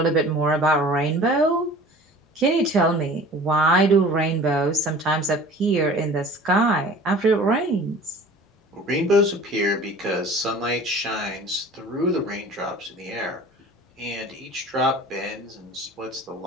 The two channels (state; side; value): normal; both; correlation 0.44